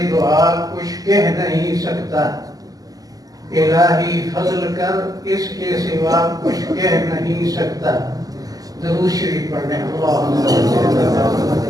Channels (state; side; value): late; left; 0.17 ms